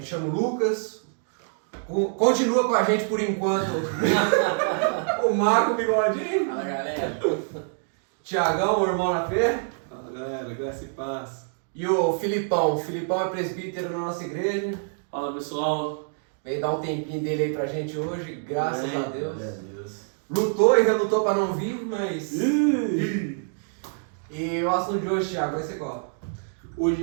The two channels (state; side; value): silent; left; digital silence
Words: chamo Lucas. Continua com a gente por enquanto o Marco Bigodinho. Fala, galera. Tiagão, o irmão na fé. Fala, galera, graça e paz. E o Filipão. O Filipão é presbítero na nossa igreja. Fala, pessoal. Veio dar um tempinho dele aí pra gente hoje, graças a Deus. Glória a Deus. Lutou e relutou pra não vir, mas... E o assunto de hoje, Thiago, vai ser qual? Hoje